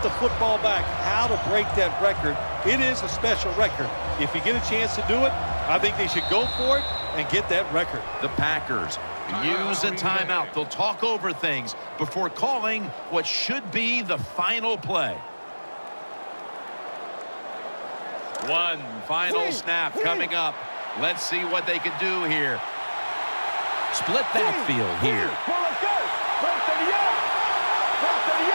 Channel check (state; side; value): inverted; both; correlation -1.00